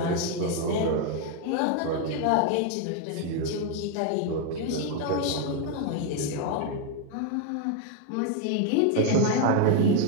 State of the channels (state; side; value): different; both; correlation 0.01